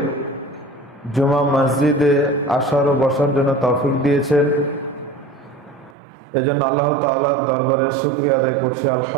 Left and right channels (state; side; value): drops out; left; at 6.0 s